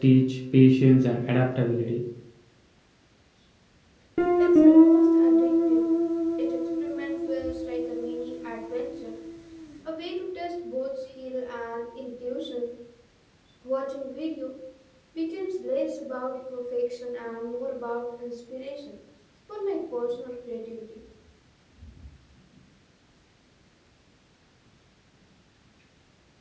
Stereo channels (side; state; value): both; identical; correlation 1.00